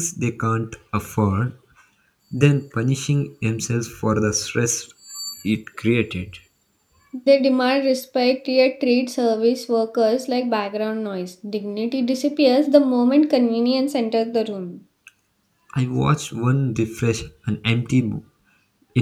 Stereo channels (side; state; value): both; identical; correlation 1.00